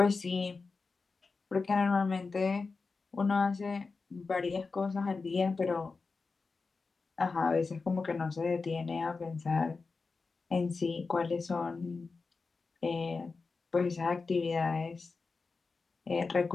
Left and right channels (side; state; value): right; quieter; 4.3 dB